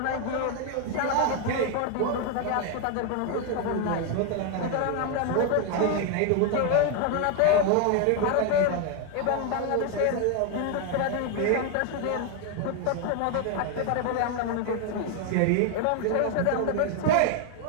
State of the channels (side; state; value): both; different; correlation 0.01